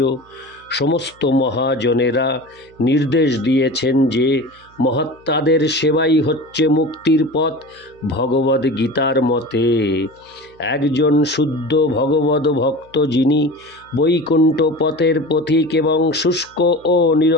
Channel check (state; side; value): noise; right; hum, 29 dB below the sound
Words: সমস্ত মহাজনেরা নির্দেশ দিয়েছেন যে মহাত্মাদের সেবাই হচ্ছে মুক্তির পথ। ভগবদ গীতার মতে একজন শুদ্ধ ভগবদ ভক্ত, যিনি বৈকুণ্ঠ পথের পথিক এবং শুষ্ক ও